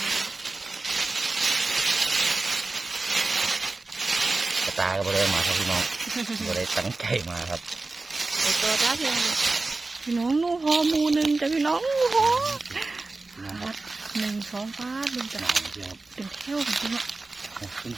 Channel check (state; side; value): quieter; left; 3.4 dB